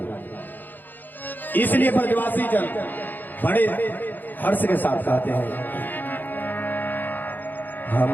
इसलिए ब्रजवासी जन बड़े हर्ष के साथ कहते हैं,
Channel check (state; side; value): late; right; 0.088 ms